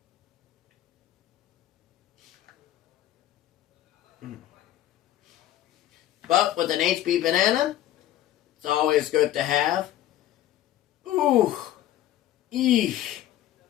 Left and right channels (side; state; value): right; quieter; 12.9 dB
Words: But with an HP banana, it's always good to have. Ooh. Eesh.